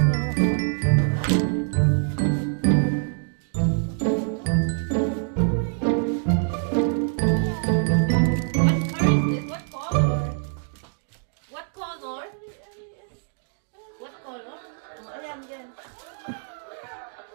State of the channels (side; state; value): left; silent; digital silence